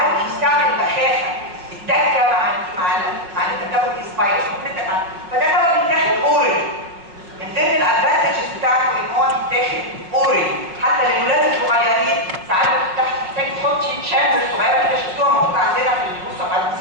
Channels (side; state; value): left; late; 5.4 ms